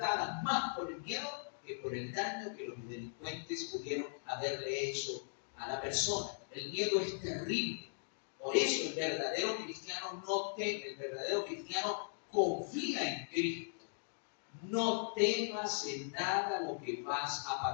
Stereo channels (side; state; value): right; silent; digital silence